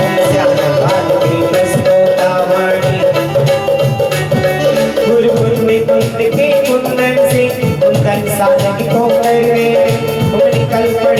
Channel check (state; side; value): identical; both; correlation 1.00